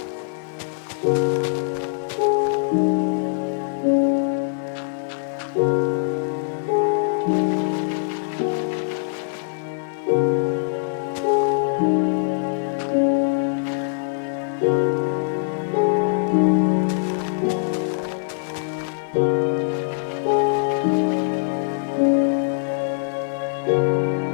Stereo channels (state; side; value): silent; right; 64 dB below the other